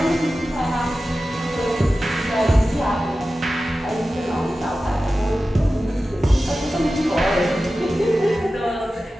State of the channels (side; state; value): both; normal; correlation 0.94